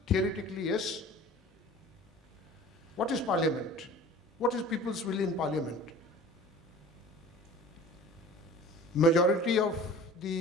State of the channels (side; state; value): both; normal; correlation 0.43